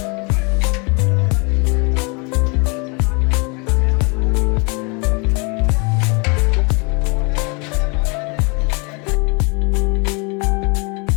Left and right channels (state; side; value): quieter; right; 32.2 dB